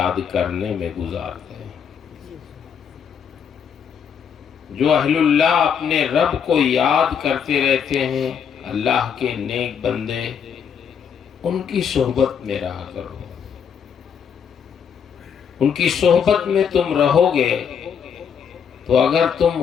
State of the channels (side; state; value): right; quieter; 7.4 dB